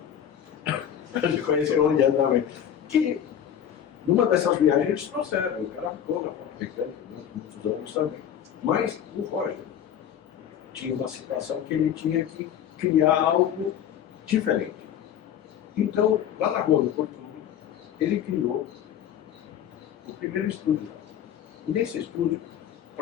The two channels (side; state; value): right; quieter; 9.5 dB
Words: a gente conheceu o Leandro também, que numa dessas viagens eles trouxeram, o cara ficou na parte mecânica durante muitos anos também. Mas o Roger tinha uma situação que ele tinha que criar algo diferente. Então, lá na Rua do Fortune, ele criou o primeiro estúdio. E nesse estúdio,